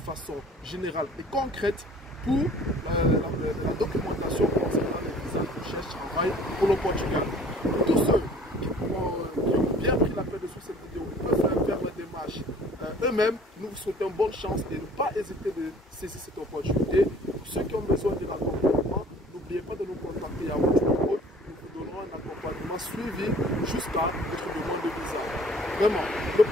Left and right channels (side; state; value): both; normal; correlation 0.51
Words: générale et concrète pour la documentation concernant les visas de recherche-travail pour le Portugal. Pour tous ceux qui ont bien pris la peine de suivre cette vidéo, ils peuvent faire la démarche eux-mêmes. Nous vous souhaitons bonne chance et ne pas hésiter de saisir cette opportunité. Pour ceux qui ont besoin de l'accompagnement, n'oubliez pas de nous contacter à votre numéro. Nous vous donnerons un accompagnement suivi jusqu'à votre demande de visa. Vraiment, le